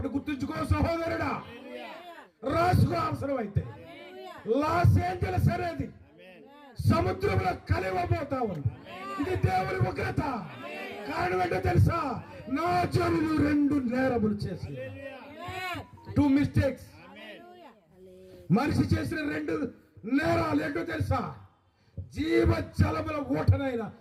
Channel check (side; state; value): both; identical; correlation 1.00